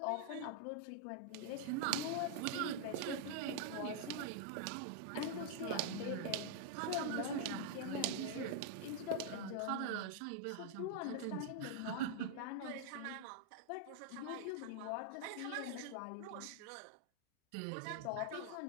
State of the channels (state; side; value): different; both; correlation -0.01